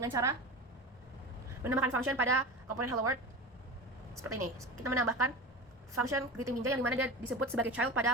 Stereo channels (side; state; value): both; normal; correlation 0.29